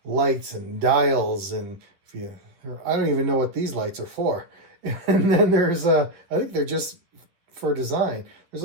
lights and dials, and I don't even know what these lights are for. And then there's I think they're just for design. There's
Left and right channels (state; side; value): late; left; 11 ms